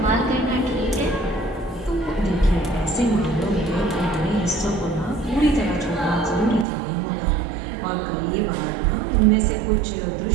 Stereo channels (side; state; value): left; drops out; at 6.7 s